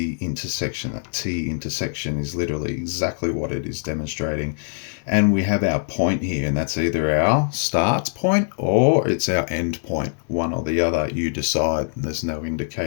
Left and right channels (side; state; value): right; silent; digital silence